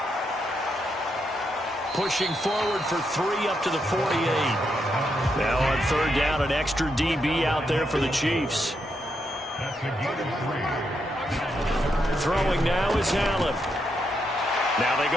Pushing forward for 3 up to the 48. Now on 3rd down, an extra DB out there for the Chiefs. Throwing now is Allen. Now they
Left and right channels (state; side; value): normal; both; correlation 0.81